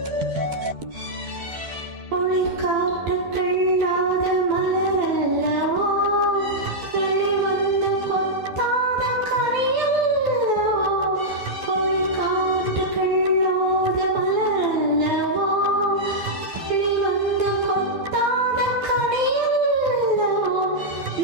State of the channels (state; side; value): late; left; 12 ms